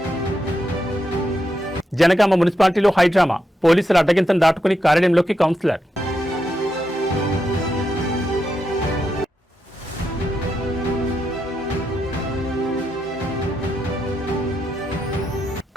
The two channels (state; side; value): normal; both; correlation 0.83